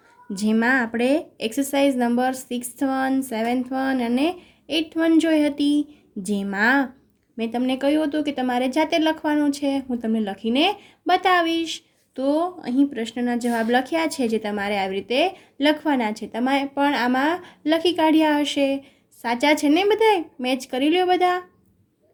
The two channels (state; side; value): identical; both; correlation 1.00